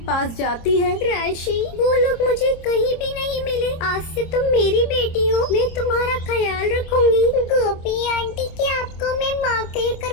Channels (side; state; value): right; late; 26 ms